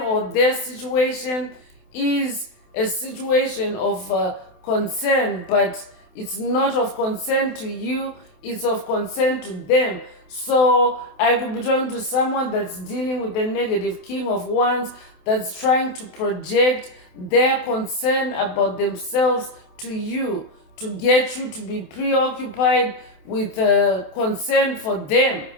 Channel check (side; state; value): right; late; 27 ms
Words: their situation is a situation of concern, but it's not of concern to you, it's of concern to them. So I could be talking to someone that's dealing with the negative king of wands, that's trying to project their concern about themselves to you, to get you to be preoccupied with concern for them,